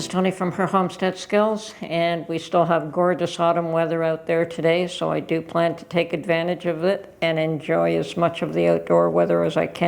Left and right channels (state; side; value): identical; both; correlation 1.00